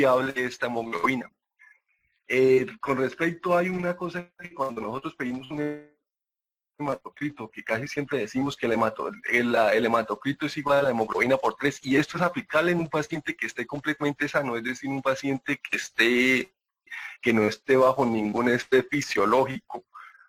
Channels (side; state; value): both; identical; correlation 1.00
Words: esta hemoglobina. Con respecto, hay una cosa que cuando nosotros pedimos un hematocrito, que casi siempre decimos que el hematocrito es igual a la hemoglobina por 3, y esto es aplicable en un paciente que esté completamente sano, es decir, un paciente que no esté bajo ningún estrés fisiológico.